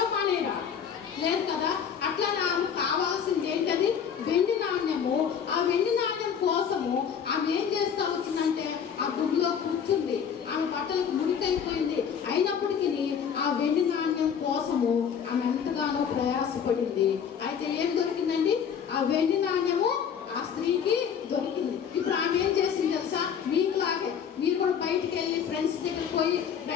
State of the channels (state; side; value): quieter; right; 7.6 dB